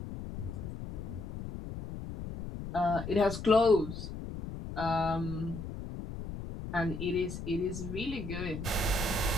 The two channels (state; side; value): noise; left; rumble, 8 dB below the sound